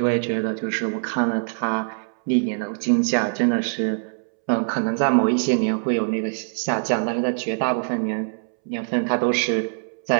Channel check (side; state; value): left; silent; 63 dB below the other